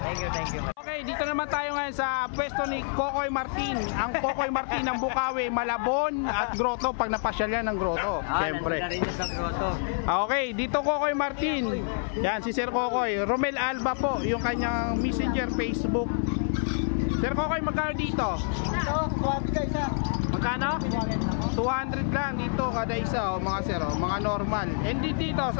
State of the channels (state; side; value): silent; right; 60 dB below the other